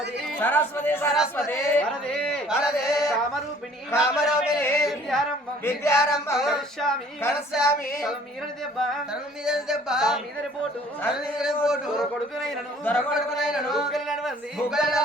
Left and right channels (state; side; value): normal; both; correlation 0.55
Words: సరస్వతి సరస్వతి వరదే వరదే కామరూపిణి కామరూపిణి విద్యారంభం విద్యారంభం కరిష్యామి కరిష్యామి తలమీదని దెబ్బ తలమీదని దెబ్బ మీదని పోటు తలమీదని పోటు కొడుకునైనను దొరకొడుకునైనను నడవంది